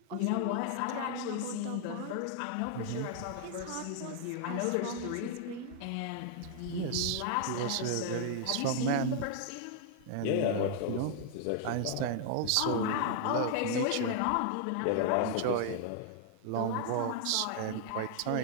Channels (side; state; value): both; different; correlation 0.00